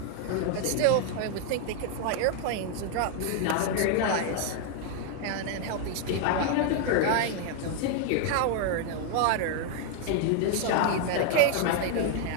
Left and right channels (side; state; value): both; different; correlation 0.00